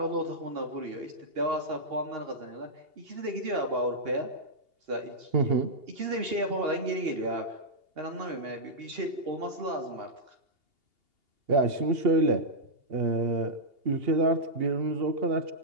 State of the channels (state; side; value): late; left; 2.8 ms